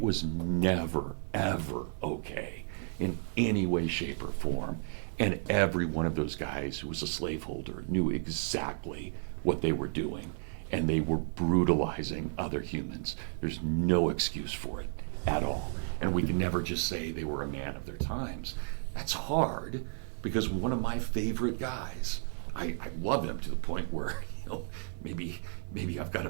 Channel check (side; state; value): left; silent; 56 dB below the other